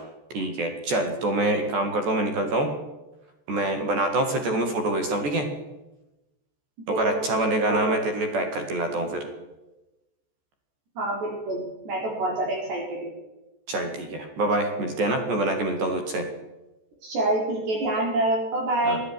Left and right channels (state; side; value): late; left; 14 ms